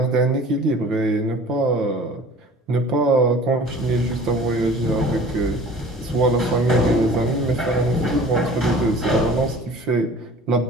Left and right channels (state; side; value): normal; both; correlation 0.46